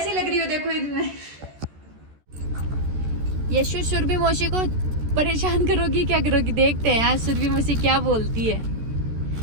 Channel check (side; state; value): left; late; 14 ms